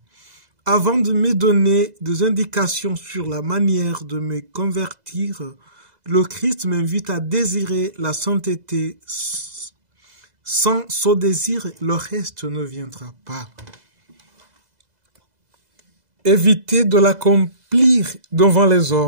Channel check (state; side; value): late; left; 2.0 ms